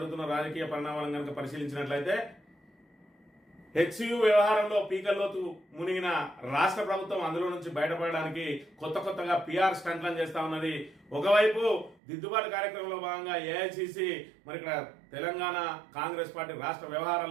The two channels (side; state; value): left; drops out; at 12.0 s